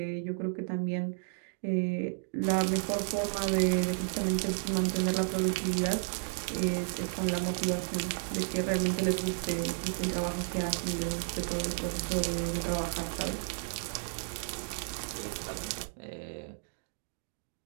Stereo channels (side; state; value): left; silent; digital silence